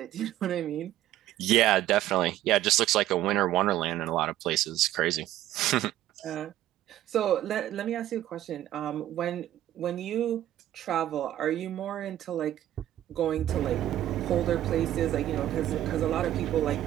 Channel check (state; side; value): quieter; left; 13.2 dB